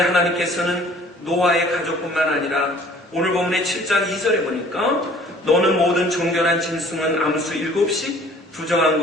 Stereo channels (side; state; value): both; normal; correlation 0.53